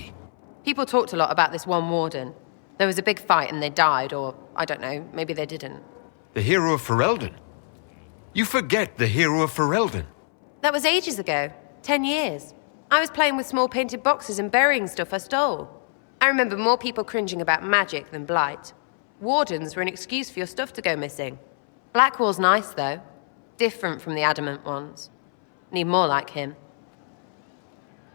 People talked a lot about this one warden. There was a big fight and they died, or, I don't know, maybe they didn't. The hero of Ferelden? You forget the hero of Ferelden. That was ages ago. 10 years. I was playing with small painted boxes and burying stuff I stole. I remember more people cringing about magic than Blight. Wardens were an excuse for your stuff to go missing. Blackwall's nice, though. Different from the Adamant ones. Need more like him.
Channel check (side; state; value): right; silent; 62 dB below the other